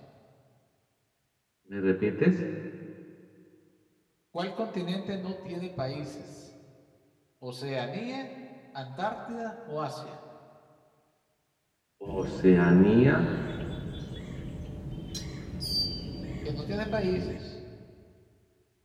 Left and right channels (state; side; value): identical; both; correlation 1.00